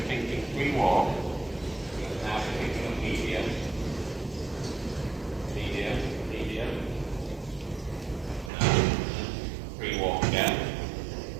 thinking free walk. Now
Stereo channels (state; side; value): drops out; left; at 8.5 s